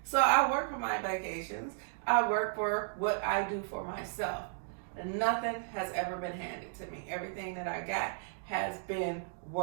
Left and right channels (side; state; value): left; silent; digital silence